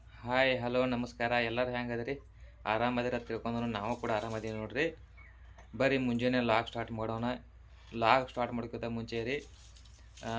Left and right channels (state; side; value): identical; both; correlation 1.00